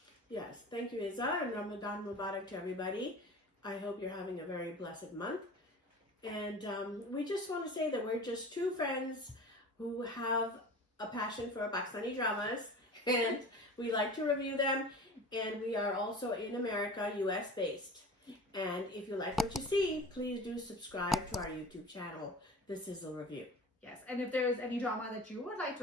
Yes, thank you, Iza, and Ramadan Mubarak to everybody. I hope you're having a very blessed month. And we just want to say that we're just two friends who have a passion for Pakistani dramas, and we like to review them. And we are also in America, US based. And if you like what you see, please do subscribe to our YouTube channel, The Sizzle Review. Yes, and if there is any drama that you would like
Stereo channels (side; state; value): both; normal; correlation 0.38